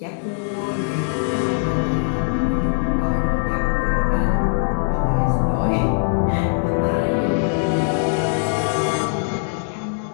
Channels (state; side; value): silent; right; digital silence